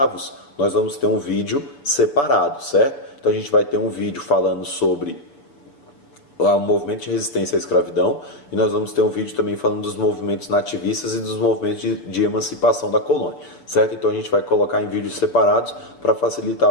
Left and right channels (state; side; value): late; right; 7.0 ms